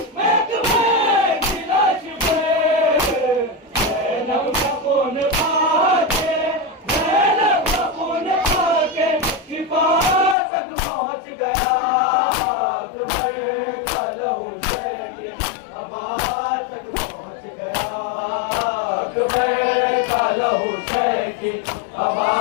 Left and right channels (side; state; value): right; drops out; at 10.4 s